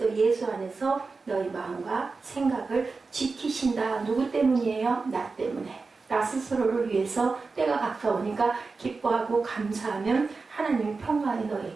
예수 안에서 너희 마음과 생각을 지키신다. 누구 때문이에요? 나 때문에. 나 스스로를 위해서 때가 가까우니까 기뻐하고 감사하면 하나님의 평강이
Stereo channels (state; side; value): quieter; left; 4.2 dB